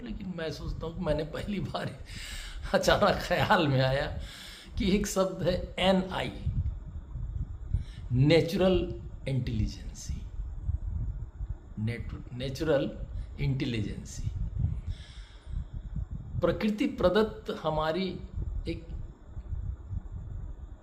मैं सोचता हूँ कि मैंने पहली बार अचानक ख्याल में आया कि एक शब्द है NI, natural intelligence. Natural intelligence प्रकृति प्रदत्त हमारी एक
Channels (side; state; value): both; identical; correlation 1.00